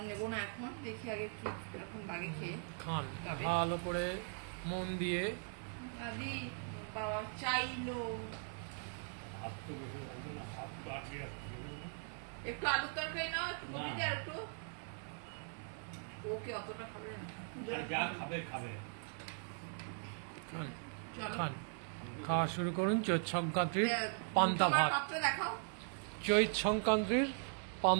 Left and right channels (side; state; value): left; silent; 51 dB below the other